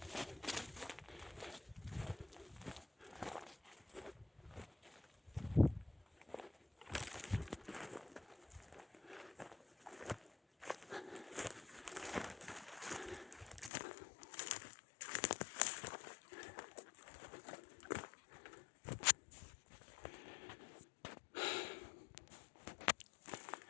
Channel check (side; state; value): right; drops out; at 13.7 s